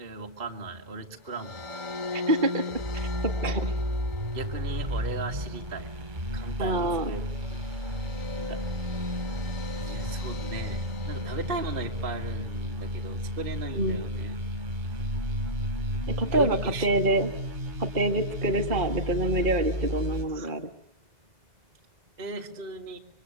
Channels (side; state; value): left; late; 2.0 ms